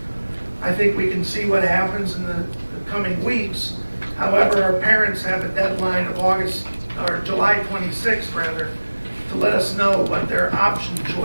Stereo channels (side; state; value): both; inverted; correlation -1.00